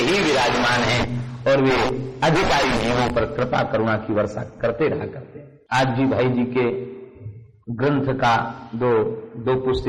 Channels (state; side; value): identical; both; correlation 1.00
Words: विराजमान हैं और वे अधिकारी जीवों पर कृपा करुणा की वर्षा करते रहा करते। आज जी भाई जी के ग्रंथ का दो